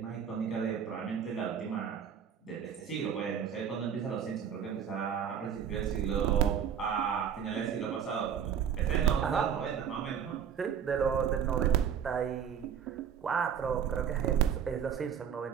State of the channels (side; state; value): left; quieter; 8.0 dB